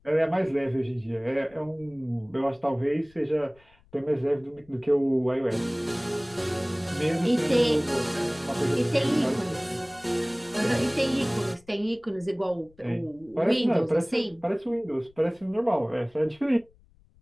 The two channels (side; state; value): left; noise; rumble, 30 dB below the sound